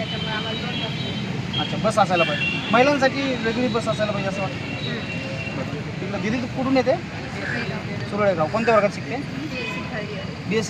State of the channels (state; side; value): identical; both; correlation 1.00